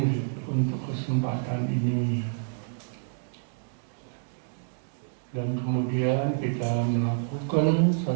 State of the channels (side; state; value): left; silent; digital silence